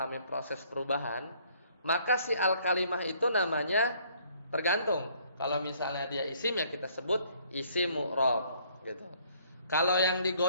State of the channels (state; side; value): inverted; both; correlation -0.62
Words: proses perubahan, maka si al-kalimah itu namanya tergantung. Kalau misalnya dia isim, ya kita sebut isim mu'rab, gitu. Kalau yang